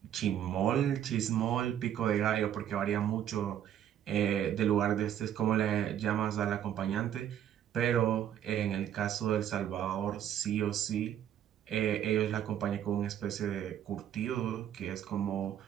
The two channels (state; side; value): quieter; left; 10.4 dB